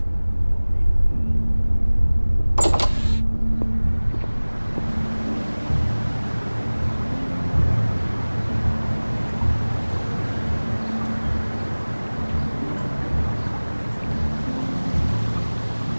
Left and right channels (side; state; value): both; inverted; correlation -1.00